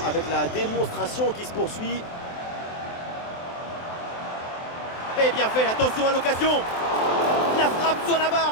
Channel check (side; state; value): right; late; 23 ms